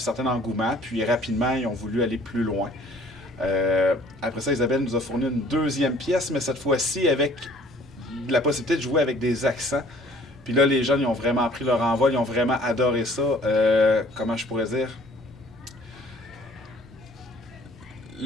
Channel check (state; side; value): normal; both; correlation 0.54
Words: engouement, puis rapidement, ils ont voulu aller plus loin. Après ça, Isabelle nous a fourni une deuxième pièce, mais cette fois-ci avec la possibilité de jouer avec des accents. Puis là, les jeunes, ils ont vraiment pris leur envol, ils ont vraiment adoré ça. Comment je pourrais dire?